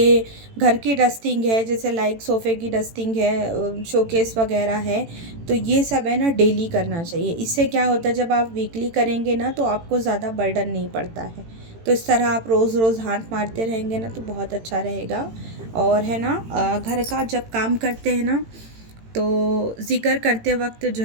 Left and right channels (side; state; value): left; late; 18 ms